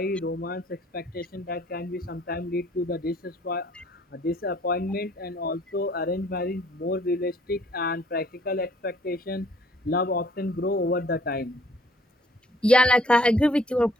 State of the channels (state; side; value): normal; both; correlation 0.60